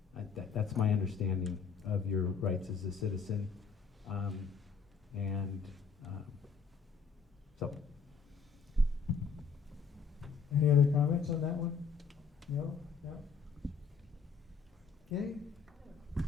That's my understanding of your rights as a citizen. So. Any other comments on that one? No? No? Okay?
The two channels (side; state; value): right; quieter; 5.5 dB